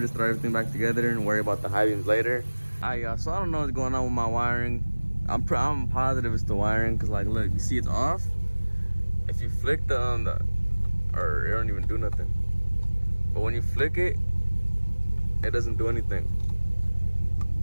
throw everything back together and worry about the high beams later. Alright, y'all, so I don't know what's going on with my wiring. I'm positive it's the wiring, cause like, look, you see it's off. If you flick the or it don't even do nothing. But when you flick it, it doesn't do anything.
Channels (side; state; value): both; inverted; correlation -1.00